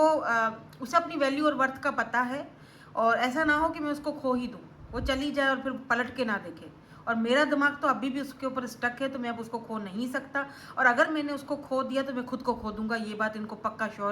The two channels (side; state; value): both; identical; correlation 1.00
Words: उसे अपनी वैल्यू और वर्थ का पता है, और ऐसा ना हो कि मैं उसको खो ही दूँ, वो चली जाए और फिर पलट के ना देखे। और मेरा दिमाग तो अभी भी उसके ऊपर स्टक है, तो मैं अब उसको खो नहीं सकता। और अगर मैंने उसको खो दिया तो मैं खुद को खो दूंगा, ये बात इनको पक्का